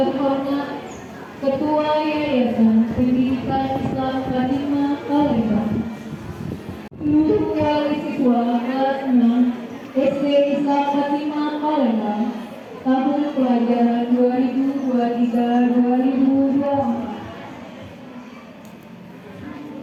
Ketua Yayasan Pendidikan Islam Fatima Palembang, seluruh wali siswa kelas 6 SD Islam Fatima Palembang tahun pelajaran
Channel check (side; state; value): both; identical; correlation 1.00